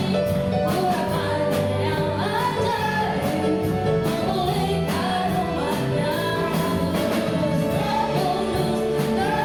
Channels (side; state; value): left; noise; rumble, 24 dB below the sound